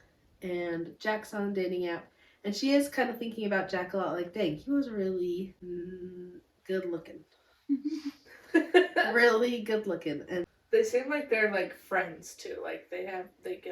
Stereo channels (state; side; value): identical; both; correlation 1.00